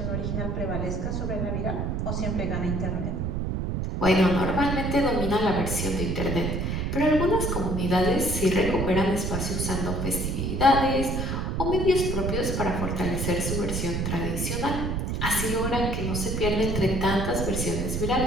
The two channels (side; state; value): right; noise; rumble, 1 dB below the sound